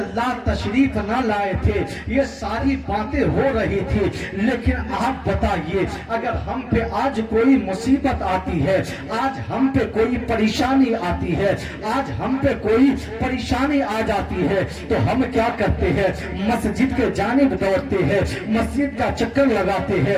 तशरीफ ना लाए थे ये सारी बातें हो रही थी। लेकिन आप बताइए अगर हम पे आज कोई मुसीबत आती है, आज हम पे कोई परेशानी आती है, आज हम पे कोई परेशानी आ जाती है तो हम क्या करते हैं? मस्जिद के जानिब दौड़ते हैं, मस्जिद का चक्कर लगाते हैं,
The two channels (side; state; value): both; identical; correlation 1.00